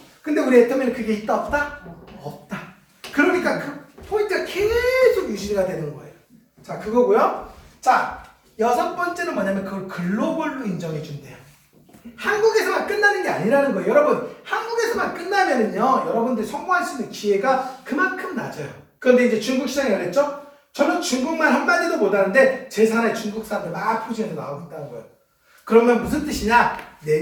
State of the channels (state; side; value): identical; both; correlation 1.00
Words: 근데 우리 애터미는 그게 있다 없다? 없다. 그러니까 그 포인트가 계속 유지가 되는 거예요. 자, 그거고요. 자, 여섯 번째는 뭐냐면 그걸 글로벌로 인정해 준대요. 한국에서만 끝나는 게 아니라는 거예요. 여러분, 한국에서만 끝나면은요 여러분들 성공할 수 있는 기회가 그만큼 낮아요. 그런데 이제 중국 시장이 그랬죠? 저는 중국말 한마디도 못하는데 제 산에 중국 사람들 막 포진해서 나오고 있다는 거예요. 그러면 무슨 뜻이냐? 내